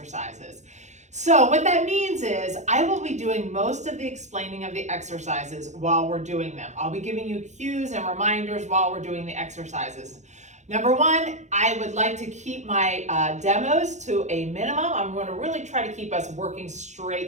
So what that means is I will be doing most of the explaining of the exercises while we're doing them. I'll be giving you cues and reminders while we're doing the exercises. Number 1, I would like to keep my demos to a minimum. I'm going to really try to keep us working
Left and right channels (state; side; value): late; left; 0.34 ms